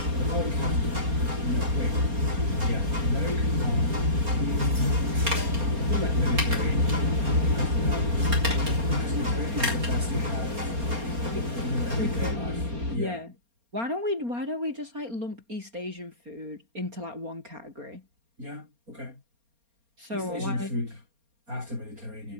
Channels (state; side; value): late; left; 4.3 ms